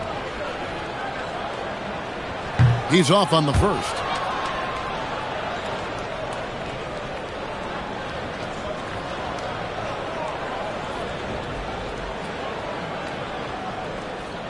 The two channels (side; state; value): both; identical; correlation 1.00